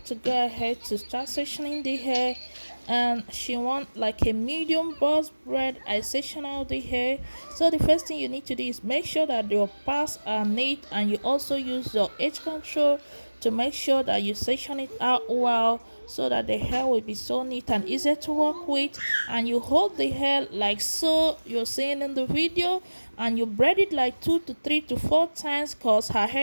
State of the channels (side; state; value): both; inverted; correlation -1.00